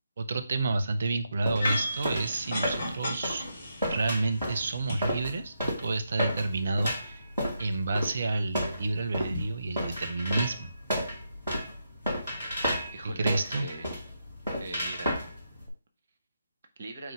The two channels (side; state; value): both; inverted; correlation -0.82